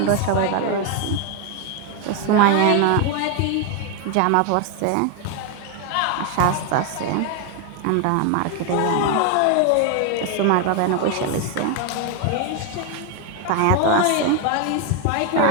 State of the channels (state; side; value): different; both; correlation 0.01